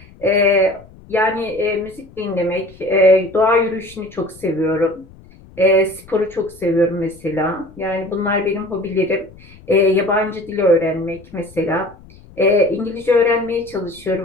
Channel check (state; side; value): noise; left; rumble, 23 dB below the sound